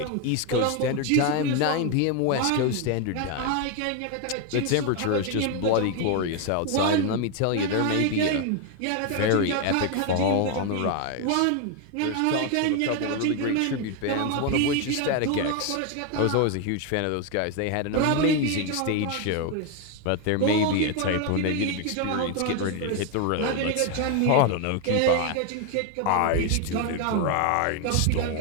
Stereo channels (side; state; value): both; different; correlation 0.01